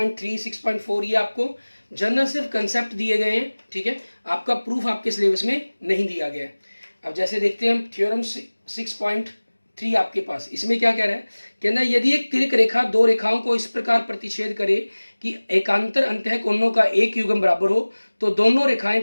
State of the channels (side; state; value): both; inverted; correlation -1.00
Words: 6.4 ये आपको जनरल सिर्फ कंसेप्ट दिए गए हैं। ठीक है, आपका प्रूफ आपके सिलेबस में नहीं दिया गया है। अब जैसे देखते हैं हम थ्योरम 6.3 आपके पास, इसमें क्या कह रहा है, कहना यदि एक तिर्क रेखा दो रेखाओं को इस प्रकार प्रतिच्छेद करे कि एकांतर अंतः कोणों का एक युग्म बराबर हो तो दोनों